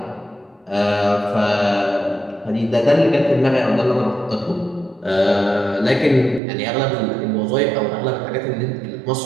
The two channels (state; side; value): drops out; left; at 6.4 s